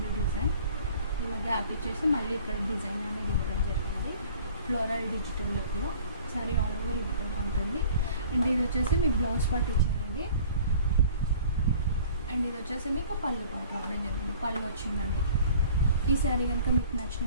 డిజైన్. ఇలా గ్యాప్ ఇచ్చేసి మళ్ళీ ఇక్కడ డిజైన్ అనేది ఇవ్వడం జరిగింది ఫ్లోరల్ డిజిటల్ లుక్లో. శారీ ఆల్ ఓవర్ ఈ విధంగా ఉంటుంది. అండ్ ఇది వచ్చేసి మీకు బ్లౌజ్ పార్ట్ ఇచ్చారండి. అండ్ ఇది వచ్చేసి మీకు పళ్ళు పార్ట్ రావడం జరిగింది, పళ్ళు వచ్చిందండి. ఈ శారీ కనుక మీకు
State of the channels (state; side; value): inverted; both; correlation -0.49